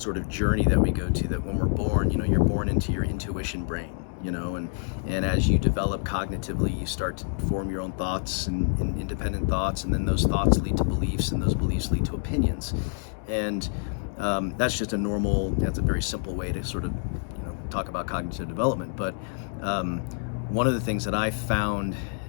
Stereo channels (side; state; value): right; silent; 60 dB below the other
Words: of journey that we go to, that when we're born, you're born into your intuition brain, and as you develop cognitively, you start to form your own thoughts and independent thoughts, and then those thoughts lead to beliefs, and those beliefs lead to opinions. And that's just that's a very simple way to sort of talk about cognitive development. But one of the things that I found,